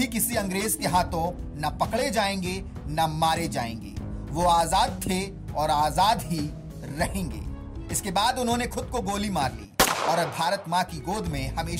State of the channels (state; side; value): identical; both; correlation 1.00